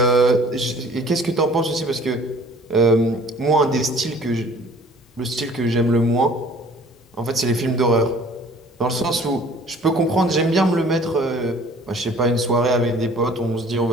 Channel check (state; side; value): normal; both; correlation 0.52